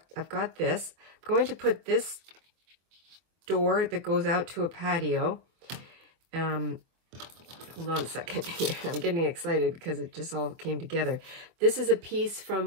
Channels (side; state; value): left; late; 24 ms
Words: this. I'm going to put this door that goes out to a patio. Hold on a second here. I'm getting excited because it just all came together. This is a piece